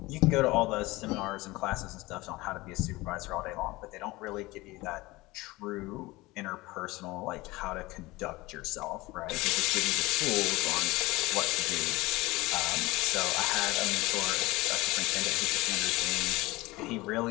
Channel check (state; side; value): quieter; right; 20.8 dB